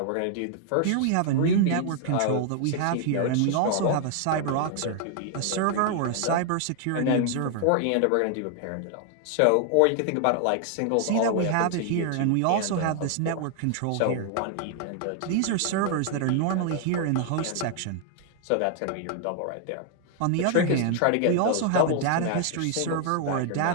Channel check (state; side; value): different; both; correlation 0.00